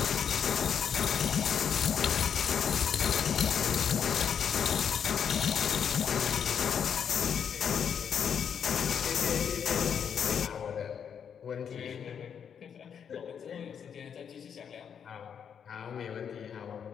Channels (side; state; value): right; quieter; 7.7 dB